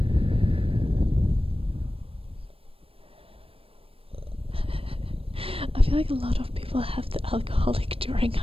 I feel like a lot of people have the alcoholic during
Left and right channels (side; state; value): left; late; 0.27 ms